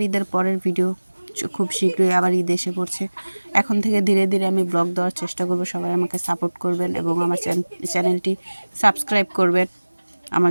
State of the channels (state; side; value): inverted; both; correlation -1.00